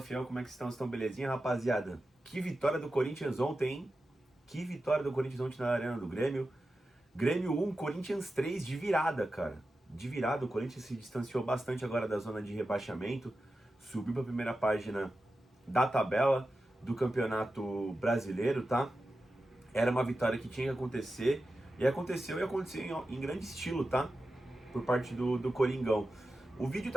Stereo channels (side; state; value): both; normal; correlation 0.92